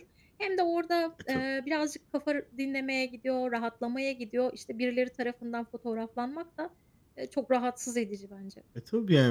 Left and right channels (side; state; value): both; identical; correlation 1.00